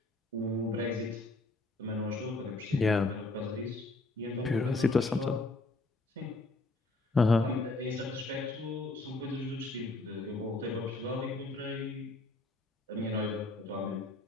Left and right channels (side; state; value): right; quieter; 3.1 dB